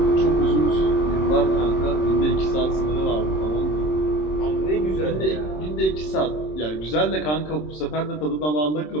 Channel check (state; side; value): late; right; 26 ms